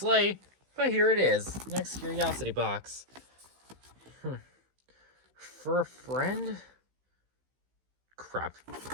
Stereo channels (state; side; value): late; left; 15 ms